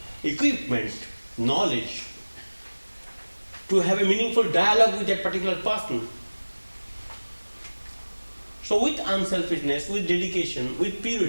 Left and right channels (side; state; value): both; inverted; correlation -1.00